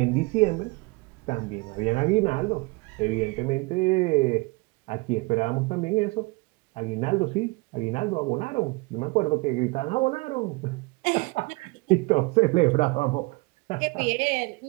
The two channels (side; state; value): left; quieter; 25.6 dB